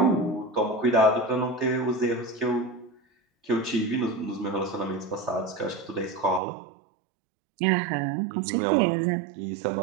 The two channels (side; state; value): left; drops out; at 6.4 s